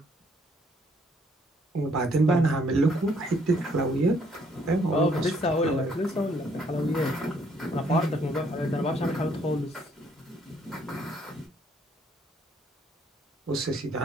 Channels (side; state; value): both; normal; correlation 0.67